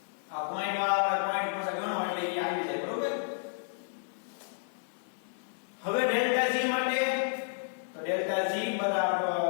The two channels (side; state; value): right; silent; digital silence